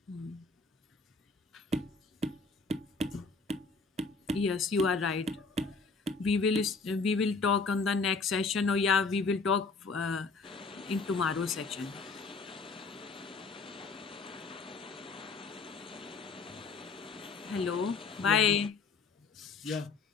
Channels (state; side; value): quieter; right; 4.3 dB